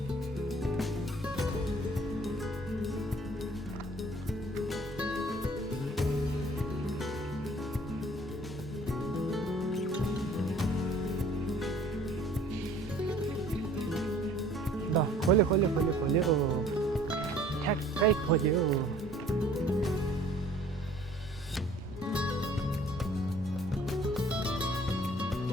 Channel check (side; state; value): both; normal; correlation 0.54